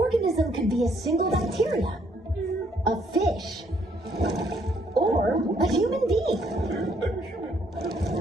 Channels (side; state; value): both; normal; correlation 0.68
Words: could be a single bacteria, a fish, or a human being.